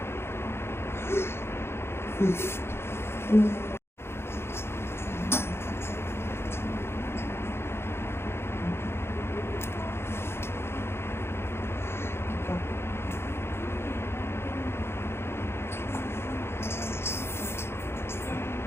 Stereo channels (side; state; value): right; late; 0.12 ms